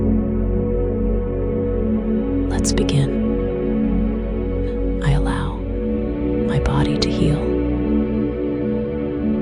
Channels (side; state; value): both; identical; correlation 1.00